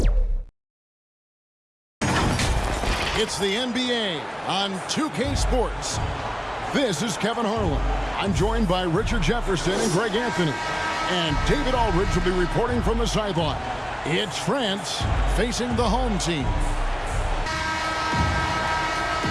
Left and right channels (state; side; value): identical; both; correlation 1.00